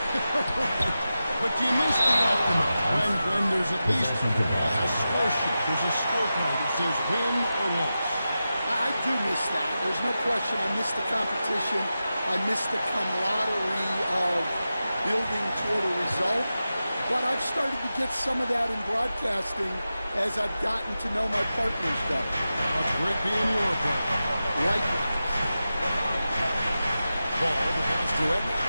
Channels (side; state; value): both; inverted; correlation -0.92